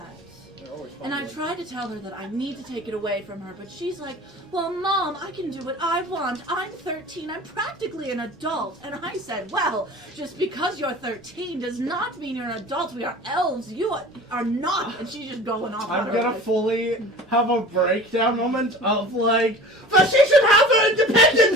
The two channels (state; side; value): normal; both; correlation 0.40